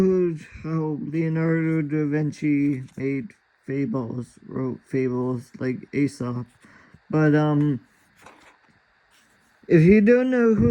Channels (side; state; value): both; identical; correlation 1.00